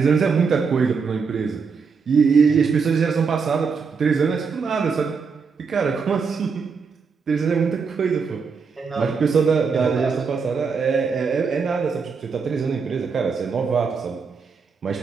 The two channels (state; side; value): quieter; left; 5.4 dB